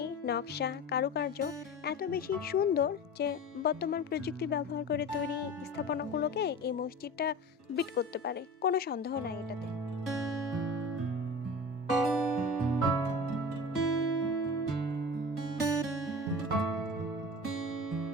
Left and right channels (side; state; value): both; normal; correlation 0.33